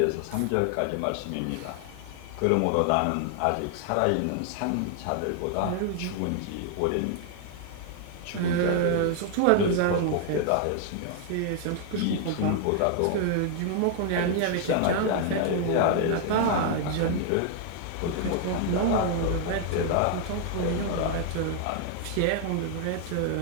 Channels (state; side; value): different; both; correlation 0.00